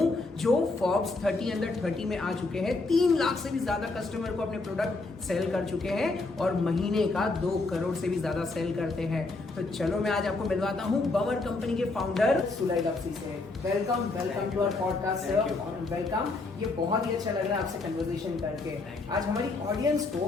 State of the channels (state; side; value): quieter; right; 3.4 dB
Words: जो फोर्ब्स 30 अंडर 30 में आ चुके हैं, 3 लाख से भी ज्यादा कस्टमर को अपने प्रोडक्ट सेल कर चुके हैं और महीने का 2 करोड़ से भी ज्यादा सेल करते हैं। तो चलो मैं आज आपको मिलवाता हूं बवर कंपनी के फाउंडर सुलय लवसी से। Welcome to our podcast sir, welcome. ये बहुत ही अच्छा लग रहा है आपसे कन्वर्सेशन करके। आज हमारी ऑडियंस